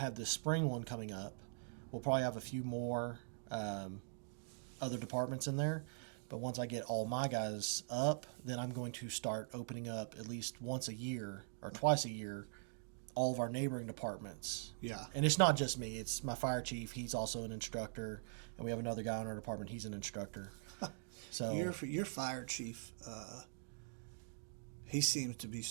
this spring one coming up, we'll probably have a few more other departments in there. But once I get all my guys up, then I'm going to start opening up at least once a year or twice a year all of our neighboring departments. Yeah. And it's not just me. It's my fire chief. He's also an instructor. And we have another guy in our department. He's an instructor. So your fire chief, he seems to be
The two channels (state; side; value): silent; left; digital silence